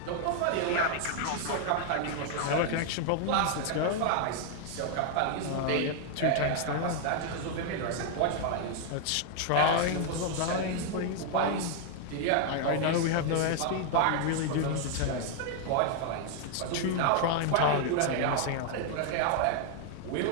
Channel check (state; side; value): different; both; correlation 0.00